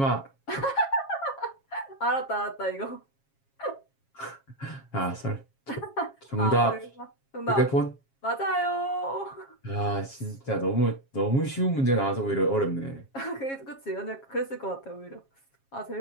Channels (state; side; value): late; right; 7.3 ms